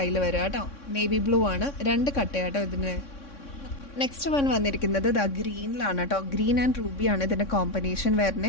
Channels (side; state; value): right; late; 3.6 ms